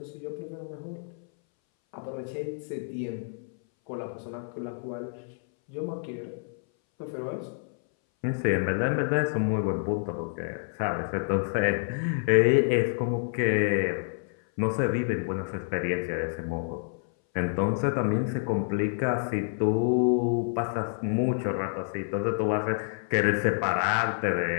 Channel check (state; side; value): silent; right; 59 dB below the other